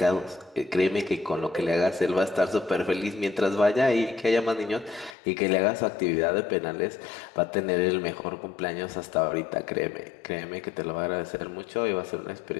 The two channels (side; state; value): right; drops out; at 5.2 s